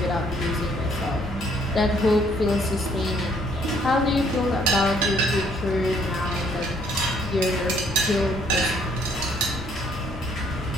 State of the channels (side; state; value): both; normal; correlation 0.64